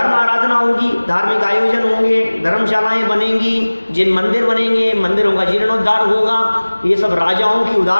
आराधना होगी, धार्मिक आयोजन होंगे, धर्मशालाएं बनेंगी, जिन मंदिर बनेंगे, मंदिरों का जीर्णोद्धार होगा, ये सब राजाओं की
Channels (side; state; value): both; inverted; correlation -1.00